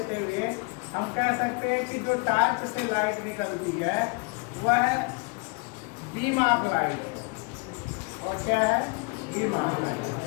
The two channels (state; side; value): quieter; right; 31.7 dB